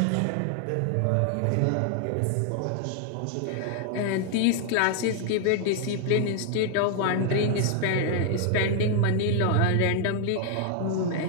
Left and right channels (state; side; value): different; both; correlation 0.00